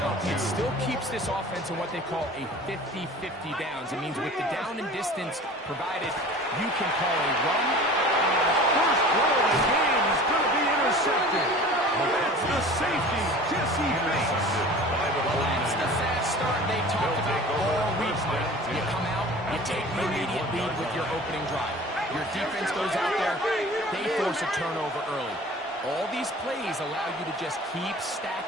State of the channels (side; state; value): both; normal; correlation 0.42